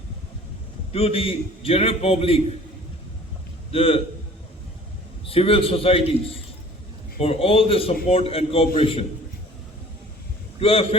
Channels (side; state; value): both; normal; correlation 0.48